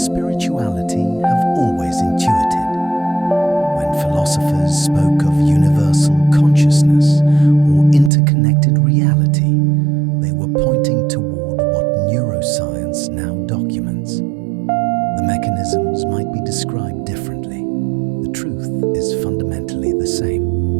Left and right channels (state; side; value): drops out; left; at 8.1 s